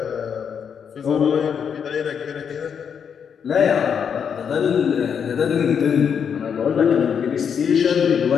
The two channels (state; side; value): quieter; right; 7.3 dB